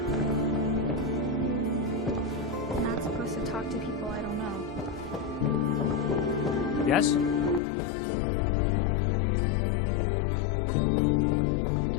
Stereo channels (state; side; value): drops out; right; at 7.6 s